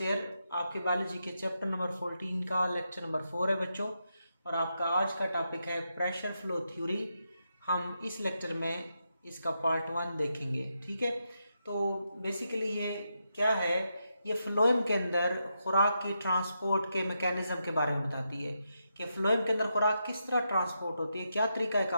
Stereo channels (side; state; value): both; inverted; correlation -0.84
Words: ईयर आपके बायोलॉजी के चैप्टर नंबर 14 का लेक्चर नंबर 4 है बच्चों, और आपका आज का टॉपिक है प्रेशर फ्लो थ्योरी। हम इस लेक्चर में इसका पार्ट 1 देखेंगे। ठीक है, तो बेसिकली ये क्या है, ये फ्लोएम के अंदर खुराक की ट्रांसपोर्ट के मैकेनिज्म के बारे में बताती है कि फ्लोएम के अंदर खुराक किस तरह ट्रांसपोर्ट होती है, क्या